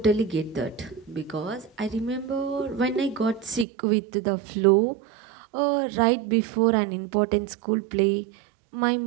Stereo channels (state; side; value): drops out; left; at 3.7 s